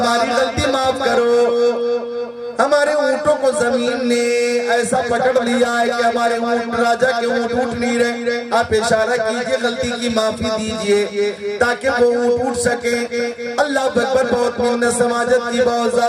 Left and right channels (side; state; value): both; identical; correlation 1.00